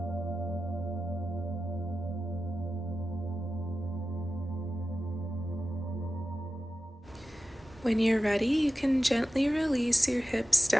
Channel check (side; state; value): both; normal; correlation 0.93